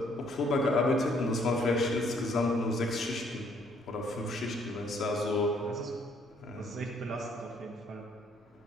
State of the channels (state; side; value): normal; both; correlation 0.65